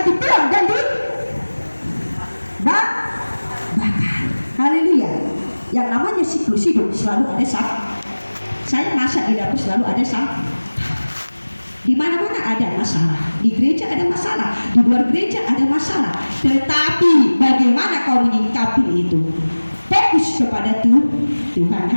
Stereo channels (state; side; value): inverted; both; correlation -1.00